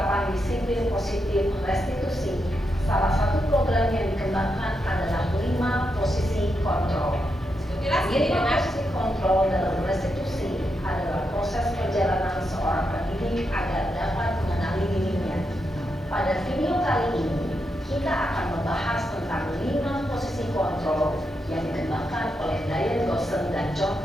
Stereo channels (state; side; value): normal; both; correlation 0.84